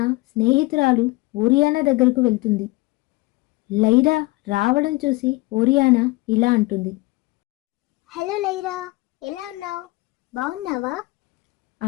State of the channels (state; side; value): quieter; right; 22.4 dB